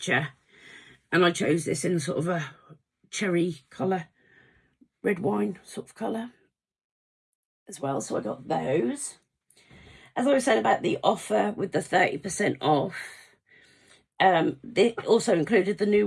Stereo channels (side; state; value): both; identical; correlation 1.00